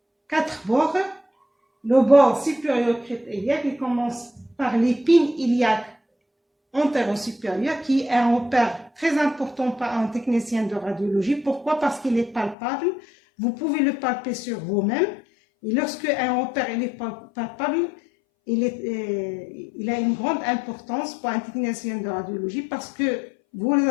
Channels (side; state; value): right; drops out; at 12.6 s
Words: 4 bords. Le bord supérieur crête iliaque, il commence par l'épine iliaque antéro-supérieur, qui est un repère très important pour un technicien de radiologie. Pourquoi? Parce qu'il est palpable. Vous pouvez le palper sur vous-même. Et lorsque un repère est palpable, il a une grande importance pour un technicien de radiologie parce que